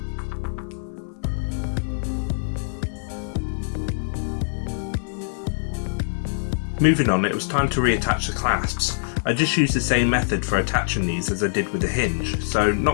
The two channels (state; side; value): silent; right; digital silence